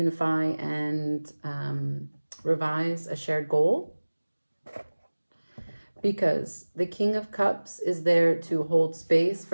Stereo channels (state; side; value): inverted; both; correlation -1.00